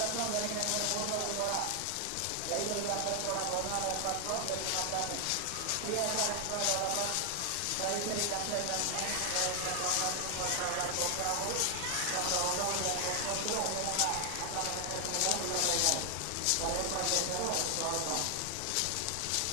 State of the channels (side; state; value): both; different; correlation 0.00